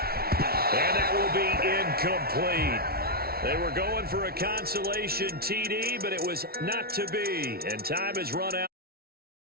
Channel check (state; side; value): late; left; 0.44 ms